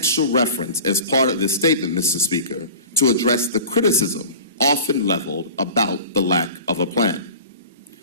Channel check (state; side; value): inverted; both; correlation -0.39